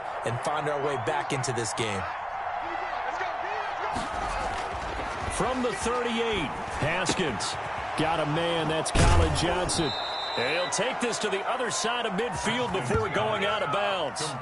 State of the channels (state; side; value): identical; both; correlation 1.00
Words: and find our way back into this game. From the 38, Haskins got a man. That's Colin Johnson. And he'll take this to the other side of midfield before going out of bounds.